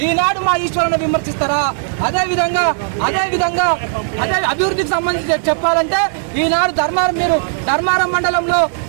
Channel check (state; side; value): silent; left; digital silence